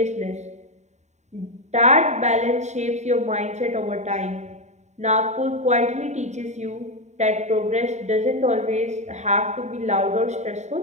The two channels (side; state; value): left; late; 0.34 ms